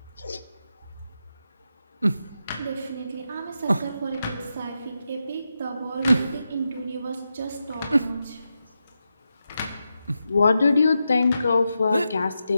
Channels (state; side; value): inverted; both; correlation -0.88